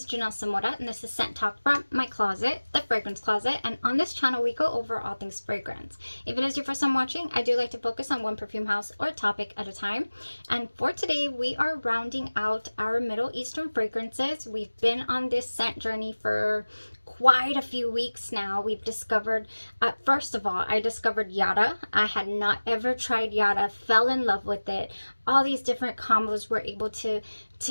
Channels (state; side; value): inverted; both; correlation -1.00